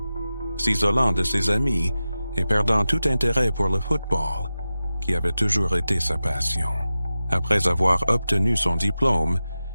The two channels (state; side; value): inverted; both; correlation -0.94